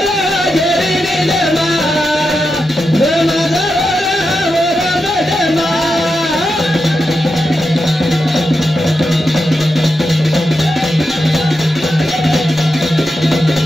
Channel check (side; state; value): both; normal; correlation 0.88